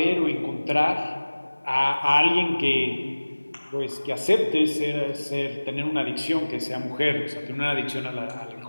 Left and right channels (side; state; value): both; inverted; correlation -1.00